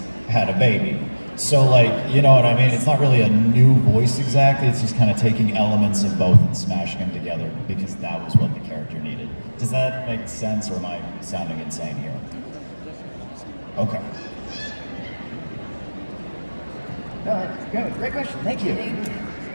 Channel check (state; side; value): inverted; both; correlation -1.00